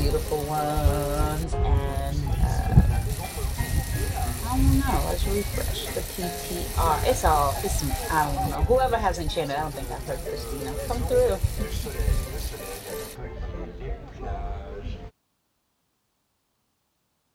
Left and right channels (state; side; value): identical; both; correlation 1.00